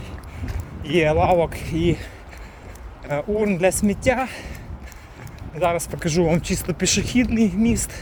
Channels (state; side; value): identical; both; correlation 1.00